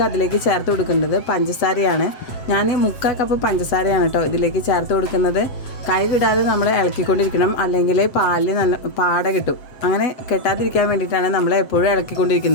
അതിലേക്ക് ചേർത്ത് കൊടുക്കേണ്ടത് പഞ്ചസാരയാണ്. ഞാൻ 3/4 കപ്പ് പഞ്ചസാരയാണ് കേട്ടോ ഇതിലേക്ക് ചേർത്ത് കൊടുക്കുന്നത്. കൈ വിടാതെ നമ്മൾ ഇളക്കിക്കൊണ്ടിരിക്കണം, അല്ലെങ്കിൽ പാലിൽ നല്ല പാട കിട്ടും. അങ്ങനെ കെട്ടാതിരിക്കാൻ വേണ്ടിയിട്ടാണ് നമ്മൾ എപ്പോഴും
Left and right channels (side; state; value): right; late; 7.7 ms